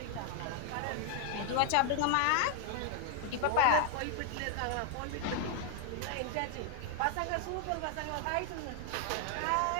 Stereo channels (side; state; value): both; different; correlation 0.00